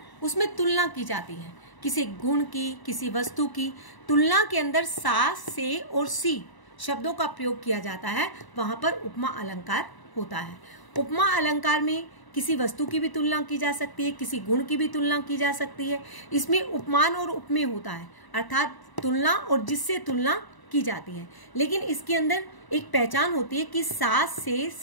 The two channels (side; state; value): right; late; 1.0 ms